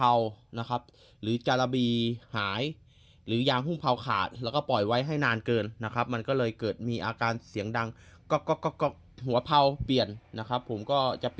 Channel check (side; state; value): both; identical; correlation 1.00